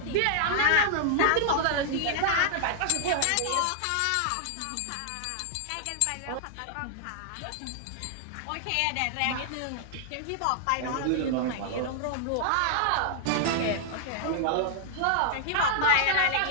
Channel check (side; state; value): both; different; correlation -0.01